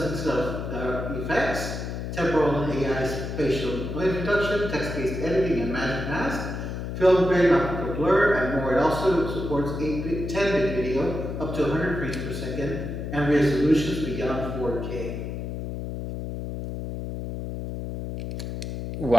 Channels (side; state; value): left; noise; hum, 5 dB below the sound